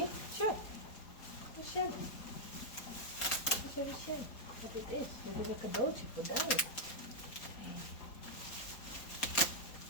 Sure. Shen. Shen. Wat dit is? Dit is een cadeautje voor Dijk.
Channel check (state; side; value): late; right; 4.3 ms